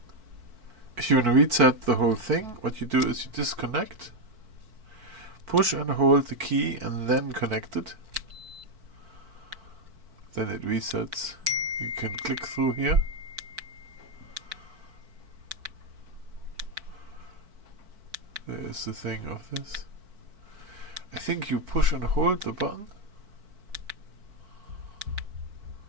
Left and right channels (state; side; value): late; left; 4.5 ms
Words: If you want to reset the whole thing, what you do is you disconnect, push and hold the key and then connect it. Then it resets. You can click through here. There is the thing of this. I think you push and hold the button.